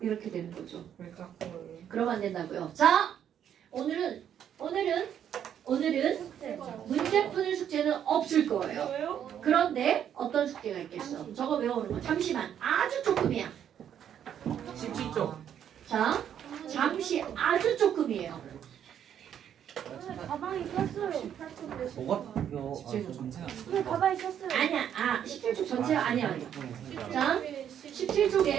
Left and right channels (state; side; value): quieter; left; 9.4 dB